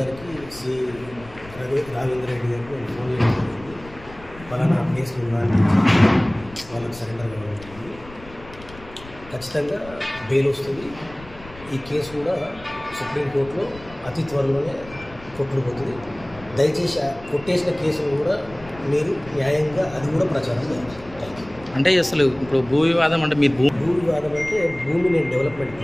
సిఐ రావేంద్ర రెడ్డి గారికి ఫోన్ చేయడం జరిగింది. పలానా కేసు నిర్వహించి వాళ్ళకి సరెండర్ కావడం జరిగింది. ఖచ్చితంగా బెయిల్ వస్తుంది. ఈ కేసు కూడా సుప్రీంకోర్టులో అతి త్వరలోనే కొట్టుకుపోతుంది. దయచేసి కొట్టేసిన కేసును కూడా మీరు న్యాయంగా అది కూడా ప్రచారం చేయాలి. అంటే అసలు ఇప్పుడు భూ వివాదం అంటే మీరు భూ వివాదం అంటే భూమి నేను డెవలప్మెంట్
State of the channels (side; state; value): left; noise; rumble, 19 dB below the sound